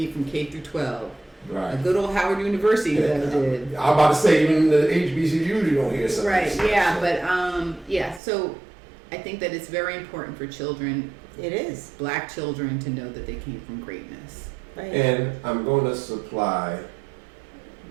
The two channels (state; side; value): drops out; left; at 8.2 s